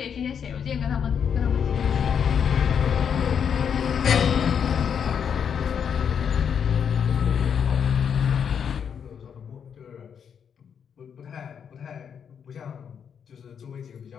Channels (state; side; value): quieter; right; 7.5 dB